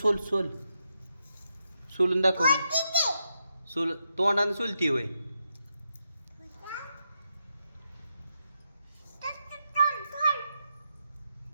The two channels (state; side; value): inverted; both; correlation -0.84